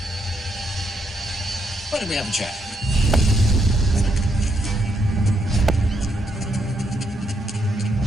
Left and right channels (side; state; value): both; normal; correlation 0.77